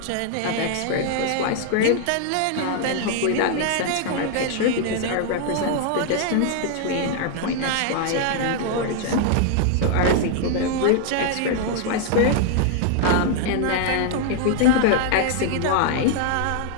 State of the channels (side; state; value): both; different; correlation 0.00